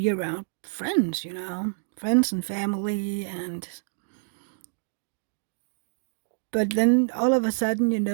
around friends, friends and family. And but then all of a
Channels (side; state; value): left; silent; digital silence